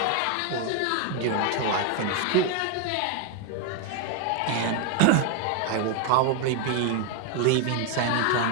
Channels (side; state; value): both; different; correlation 0.01